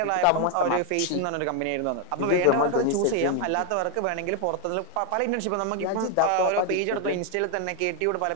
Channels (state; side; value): different; both; correlation 0.00